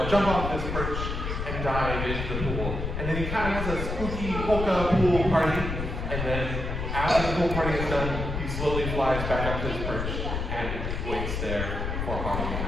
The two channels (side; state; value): left; noise; rumble, 3 dB below the sound